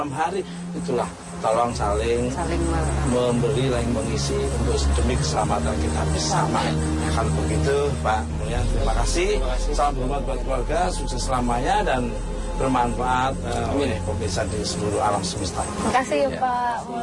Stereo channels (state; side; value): identical; both; correlation 1.00